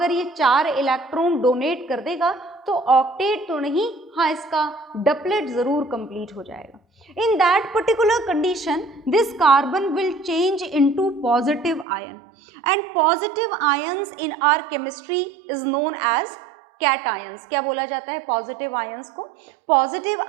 ये 4 इलेक्ट्रॉन डोनेट कर देगा तो ऑक्टेट तो नहीं, हाँ इसका डबलेट जरूर कंप्लीट हो जाएगा। In that particular condition, this carbon will change into positive ion, and positive ions in our chemistry is known as cations. क्या बोला जाता है positive ions को? Positive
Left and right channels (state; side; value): drops out; left; at 11.9 s